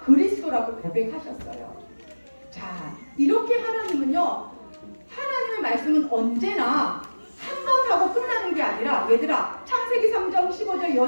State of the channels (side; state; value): both; inverted; correlation -1.00